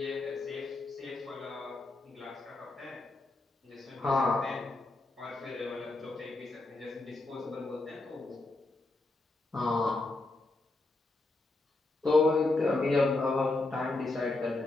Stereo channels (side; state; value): right; quieter; 3.0 dB